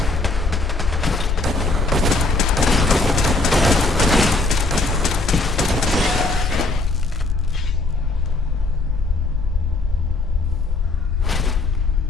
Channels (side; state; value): right; quieter; 3.3 dB